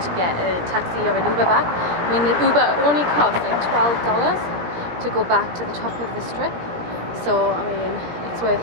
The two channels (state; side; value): late; left; 17 ms